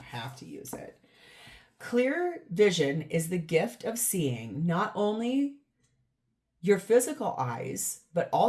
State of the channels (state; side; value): identical; both; correlation 1.00